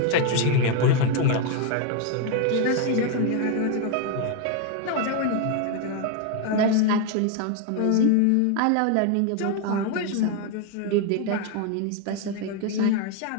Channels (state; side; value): different; both; correlation 0.01